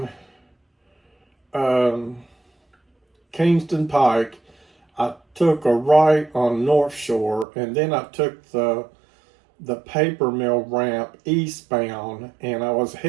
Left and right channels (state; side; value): drops out; left; at 7.5 s